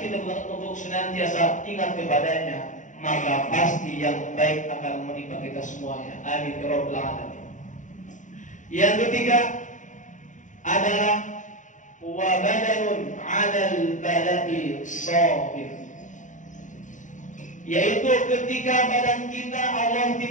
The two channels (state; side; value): late; right; 0.36 ms